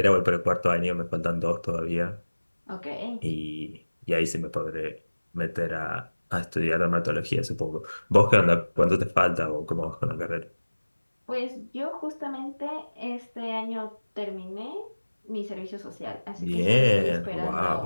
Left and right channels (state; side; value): inverted; both; correlation -1.00